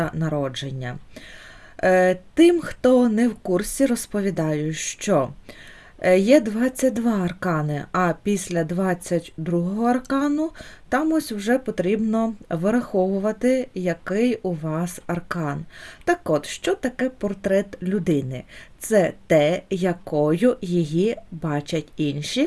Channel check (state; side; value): identical; both; correlation 1.00